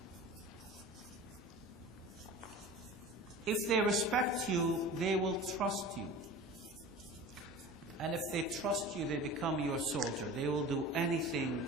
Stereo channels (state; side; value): normal; both; correlation 0.37